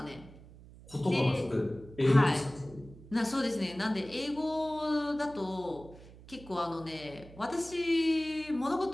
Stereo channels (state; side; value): noise; right; hum, 19 dB below the sound